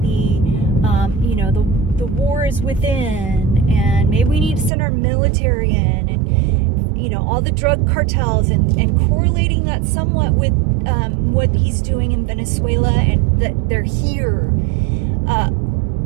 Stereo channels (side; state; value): left; drops out; at 4.7 s